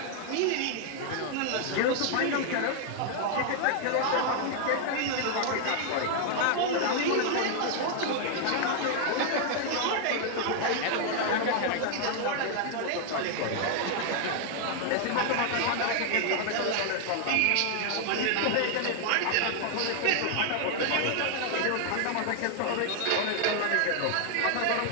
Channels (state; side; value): different; both; correlation 0.00